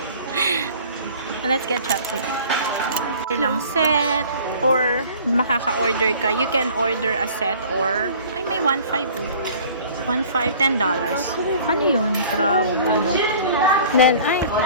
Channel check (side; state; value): both; inverted; correlation -0.48